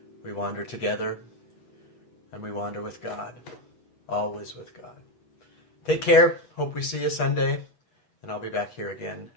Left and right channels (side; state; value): right; late; 8.2 ms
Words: We wander together, and we wander with God, always with God. Take care. Hope we see you Sunday, and I'll be back here again